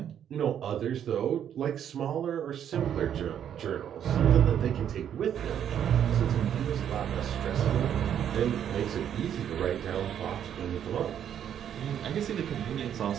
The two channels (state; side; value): quieter; left; 9.4 dB